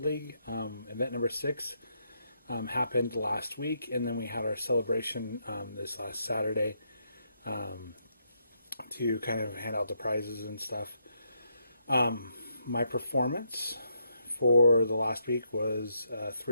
League. Event number 6 happened last week, and then we had our celebration this last Saturday to kind of hand out the prizes and stuff. My performance for the last week was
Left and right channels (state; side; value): inverted; both; correlation -0.78